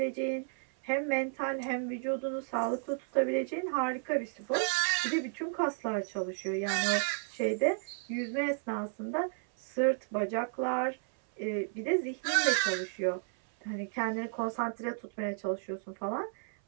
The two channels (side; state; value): left; silent; 56 dB below the other